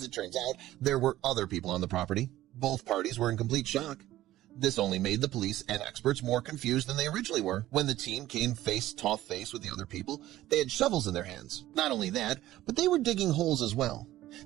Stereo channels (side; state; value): left; quieter; 14.9 dB